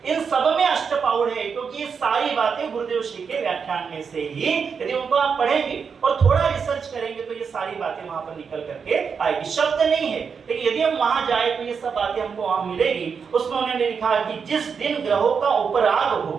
इन सब में अष्टपाउड़ है क्योंकि ये सारी बातें गुरुदेव श्री के व्याख्यान में से ही यदि उनको आप पढ़ेंगे और थोड़ा रिसर्च करेंगे तो ये सारी बातें वहां पर निकल करके आएगी। शब्द नहीं है लेकिन यदि हम वहां जाए तो ये सब बातें हमको वहां मिलेगी। उसमें उन्होंने लिखा कि जिस दिन ग्रहों का उपराग हो,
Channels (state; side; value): quieter; left; 6.1 dB